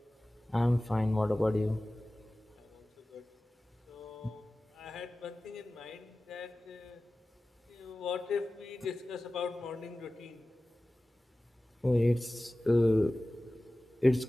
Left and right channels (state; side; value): normal; both; correlation 0.96